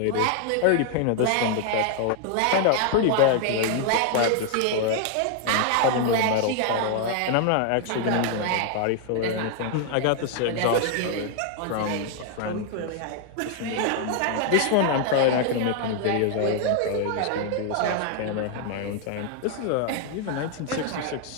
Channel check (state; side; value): different; both; correlation 0.00